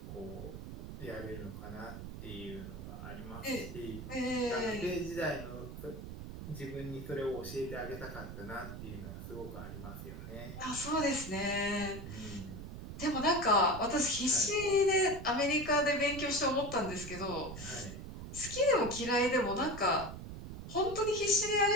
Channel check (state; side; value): noise; right; rumble, 10 dB below the sound